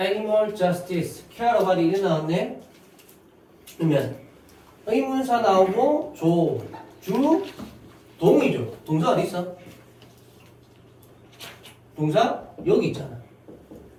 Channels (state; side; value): identical; both; correlation 1.00